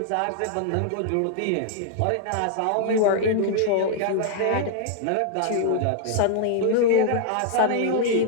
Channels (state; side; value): different; both; correlation -0.01